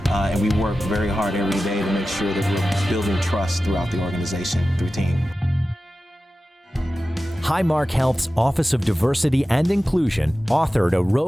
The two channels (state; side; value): normal; both; correlation 0.94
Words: and we work very hard every day to make sure that we're building trust throughout the organization through team. Highmark Health's Office of Diversity and Inclusion authored a